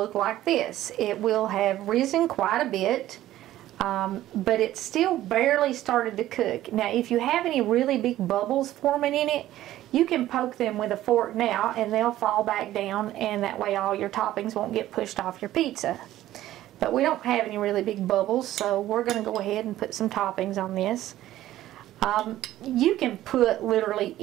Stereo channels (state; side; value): quieter; left; 14.1 dB